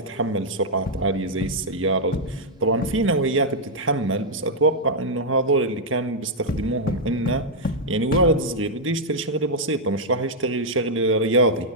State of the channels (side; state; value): both; normal; correlation -0.05